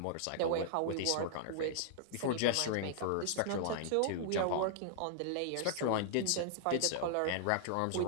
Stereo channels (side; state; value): both; different; correlation -0.01